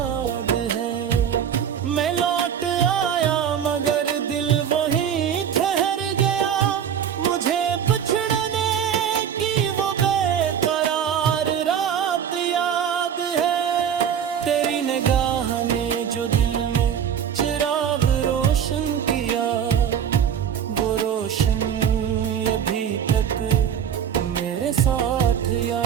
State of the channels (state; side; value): quieter; left; 8.5 dB